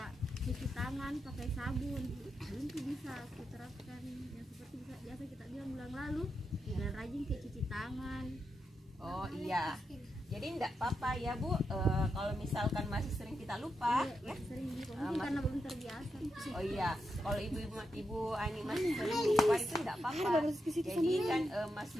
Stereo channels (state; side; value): normal; both; correlation 0.85